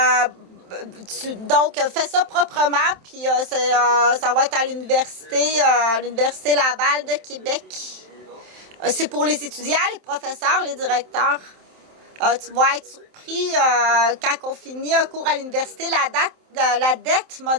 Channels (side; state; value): left; late; 27 ms